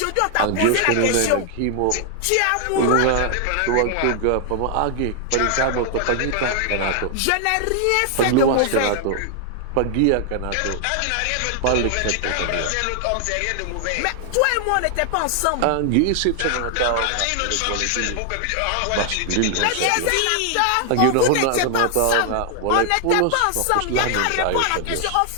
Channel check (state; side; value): different; both; correlation 0.00